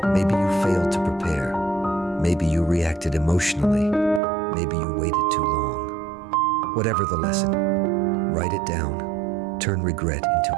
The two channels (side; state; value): left; drops out; at 4.2 s